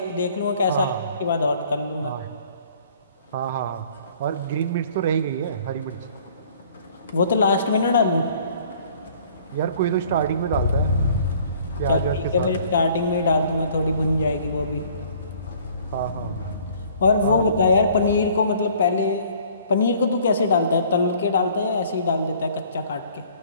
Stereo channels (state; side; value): inverted; both; correlation -0.55